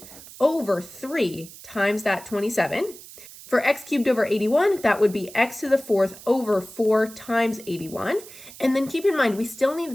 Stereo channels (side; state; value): right; noise; hiss, 17 dB below the sound